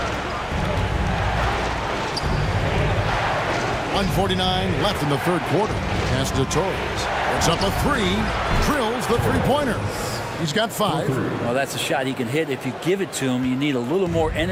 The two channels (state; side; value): identical; both; correlation 1.00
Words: 1:49 left in the third quarter. Pass to Torres. It's up a 3. Drills the three-pointer. He's got 5. Well, that's a shot he can hit. If you give it to him, you need a little more